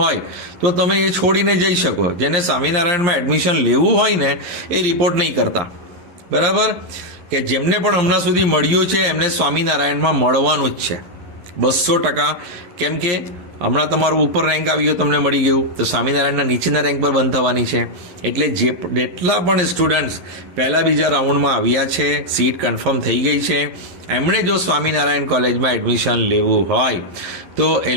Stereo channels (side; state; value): left; late; 11 ms